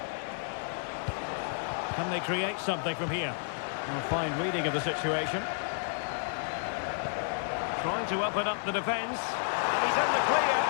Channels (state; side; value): silent; right; digital silence